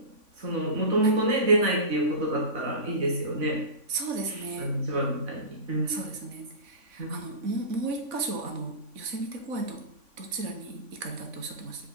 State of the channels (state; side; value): late; left; 3.5 ms